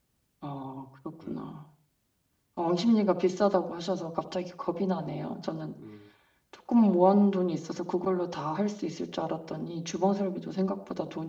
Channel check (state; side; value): identical; both; correlation 1.00